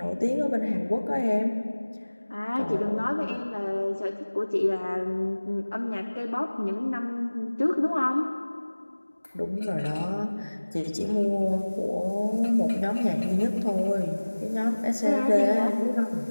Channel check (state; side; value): inverted; both; correlation -1.00